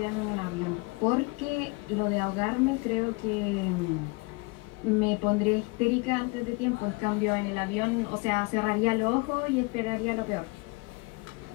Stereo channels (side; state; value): right; quieter; 27.5 dB